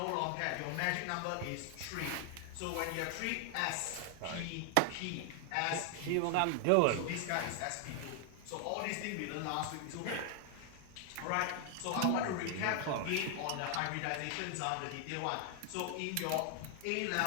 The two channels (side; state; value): both; different; correlation 0.00